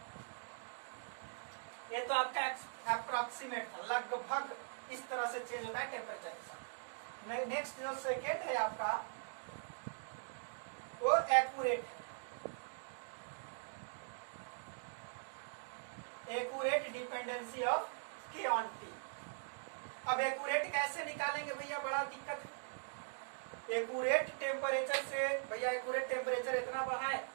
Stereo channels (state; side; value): silent; left; digital silence